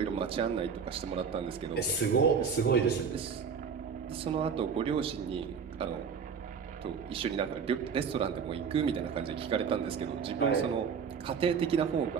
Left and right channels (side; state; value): left; quieter; 6.3 dB